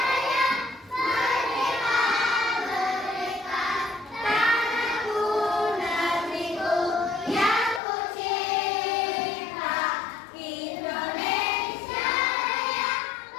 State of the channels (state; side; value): drops out; right; at 7.8 s